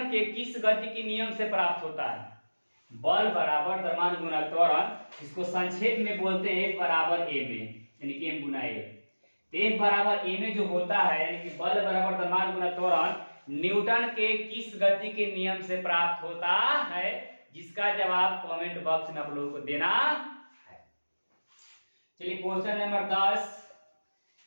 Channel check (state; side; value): inverted; both; correlation -1.00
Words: के किस गति के नियम से प्राप्त होता है। बल बराबर द्रव्यमान गुना त्वरण, इसको संक्षेप में बोलते हैं F बराबर a में, यानी कि m गुना a। तो F बराबर a में जो होता है, यानी कि बल बराबर द्रव्यमान गुना त्वरण न्यूटन के किस गति के नियम से प्राप्त होता है, जिसका जवाब कमेंट बॉक्स में आप लोगों को देना है। चलिए क्वेश्चन नंबर 10,